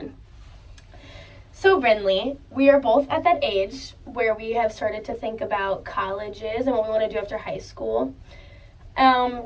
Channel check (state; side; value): identical; both; correlation 1.00